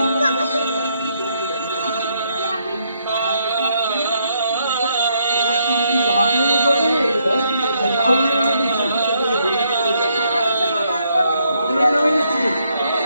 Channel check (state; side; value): inverted; both; correlation -0.74